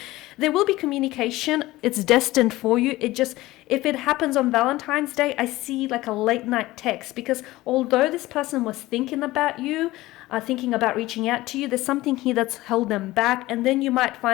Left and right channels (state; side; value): quieter; right; 18.1 dB